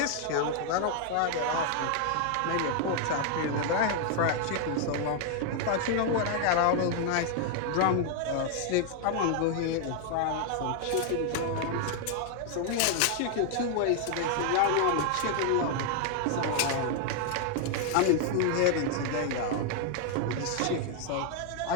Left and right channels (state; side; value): different; both; correlation 0.00